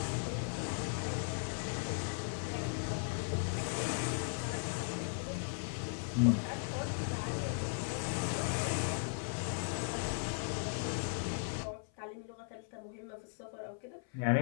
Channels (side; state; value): right; silent; 53 dB below the other